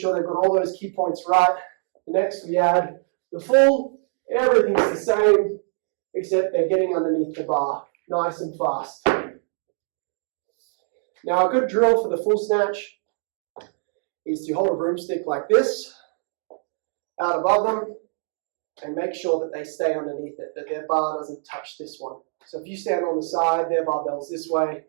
they've got all those key points right, next we add the full. Everything's the same, except they're getting underneath the bar, nice and fast. Now a good drill for the full snatch is to hold a broomstick like this, out above them, and make sure that they stay underneath it, that their bar doesn't touch this one. So if you stand on the side, their barbell's this way,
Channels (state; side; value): silent; left; 61 dB below the other